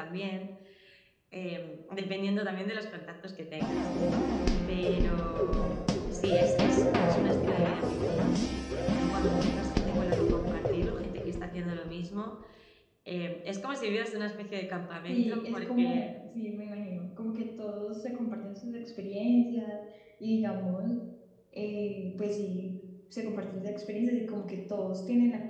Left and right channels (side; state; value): both; identical; correlation 1.00